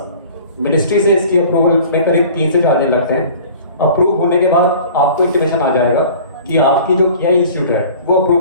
मिनिस्ट्री से इसकी अप्रूवल में करीब 3 से 4 दिन लगते हैं। अप्रूव होने के बाद आपको इंटीमेशन आ जाएगा कि आपकी जो केआई इंस्टीट्यूट है वो अप्रूव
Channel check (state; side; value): inverted; both; correlation -0.45